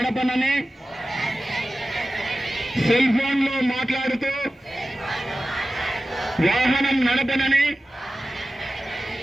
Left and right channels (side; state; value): both; normal; correlation 0.95